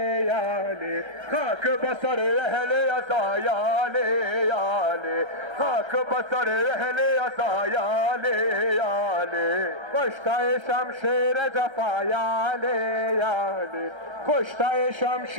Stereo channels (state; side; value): late; left; 1.3 ms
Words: یالی خاک بسر اهل ازا یالی یالی خاک بسر اهل ازا یالی یالی کشته شمشیر جفا یالی یالی کشته